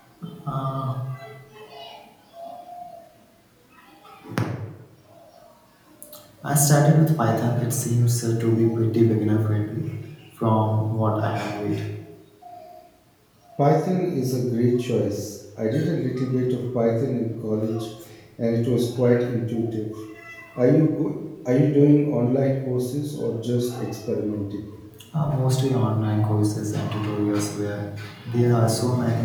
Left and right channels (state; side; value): identical; both; correlation 1.00